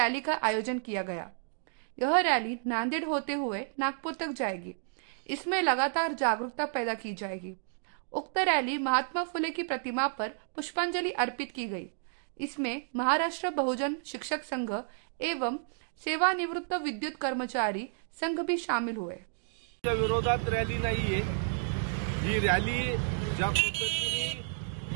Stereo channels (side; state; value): left; silent; digital silence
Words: का आयोजन किया गया। यह रैली नांदेड़ होते हुए नागपुर तक जाएगी। इसमें लगातार जागरूकता पैदा की जाएगी। उक्त रैली महात्मा फुले की प्रतिमा पर पुष्पांजलि अर्पित की गई। इसमें महाराष्ट्र बहुजन शिक्षक संघ एवं सेवानिवृत्त विद्युत कर्मचारी संघ भी शामिल हुए। विरोधात रॅली नाहीये। ही रॅली ज्या पद्धतीने